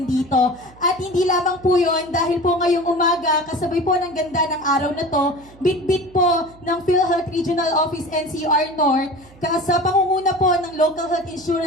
dito. At hindi lamang po yon dahil po ngayong umaga, kasabay po ng ganda ng araw na to, bit-bit po ng PhilHealth Regional Office NCR North, sa pangunguna po ng Local Health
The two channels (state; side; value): noise; right; hum, 24 dB below the sound